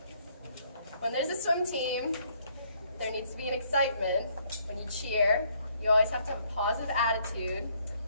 when there's a swim team, there needs to be an excitement. When you cheer, you always have to have a positive attitude.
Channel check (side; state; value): both; inverted; correlation -0.67